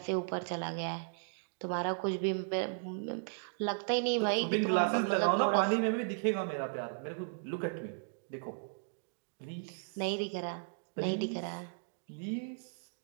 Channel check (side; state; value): left; silent; digital silence